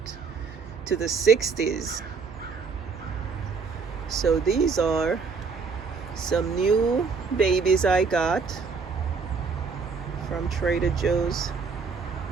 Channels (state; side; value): quieter; left; 5.1 dB